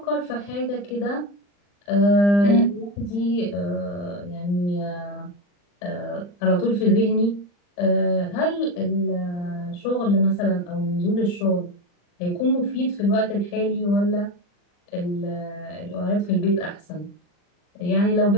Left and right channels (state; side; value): late; right; 40 ms